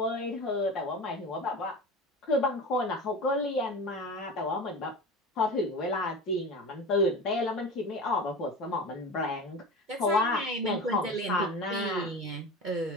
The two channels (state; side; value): normal; both; correlation 0.30